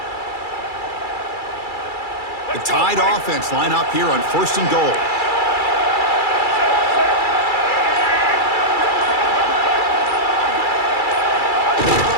The Tide offense line up here on 1st and goal.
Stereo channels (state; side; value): late; right; 2.3 ms